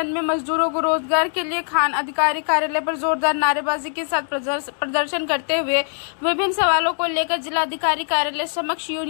में मजदूरों को रोजगार के लिए खान अधिकारी कार्यालय पर जोरदार नारेबाजी के साथ प्रदर्शन करते हुए विभिन्न सवालों को लेकर जिलाधिकारी कार्यालय समक्ष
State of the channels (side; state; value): right; silent; 59 dB below the other